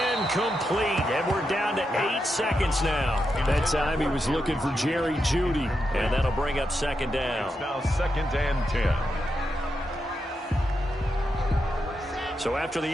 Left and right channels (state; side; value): normal; both; correlation 0.85